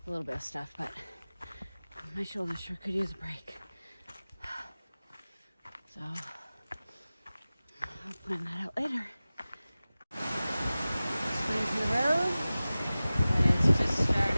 a little bit of stuff, but my shoulder sure could use a break. So I'll plan that out later. Leave the road, and it's just starting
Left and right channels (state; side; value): inverted; both; correlation -0.97